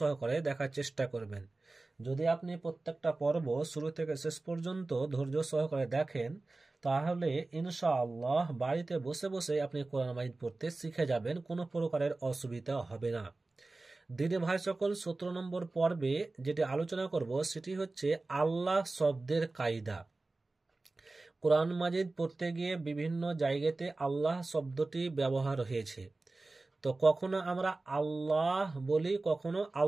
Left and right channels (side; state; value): left; quieter; 3.3 dB